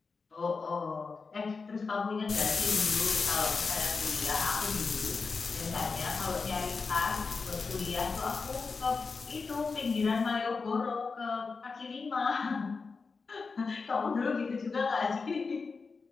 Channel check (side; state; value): right; quieter; 4.6 dB